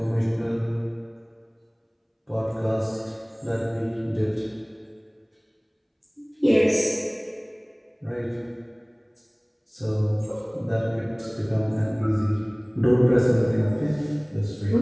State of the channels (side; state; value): both; identical; correlation 1.00